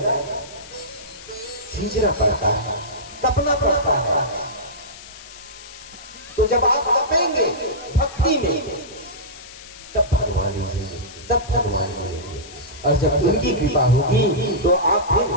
सींचना पड़ता है, तपना पड़ता है। तो जब आप तपेंगे भक्ति में, तब भगवान रीझेंगे, तब भगवान मिलेंगे। और जब उनकी कृपा होगी तो आप फिर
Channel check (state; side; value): noise; left; hiss, 17 dB below the sound